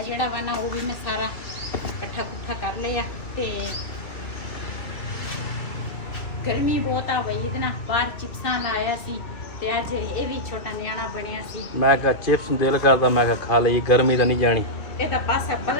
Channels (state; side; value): late; right; 2.6 ms